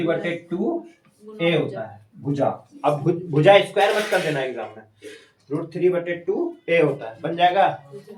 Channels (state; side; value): identical; both; correlation 1.00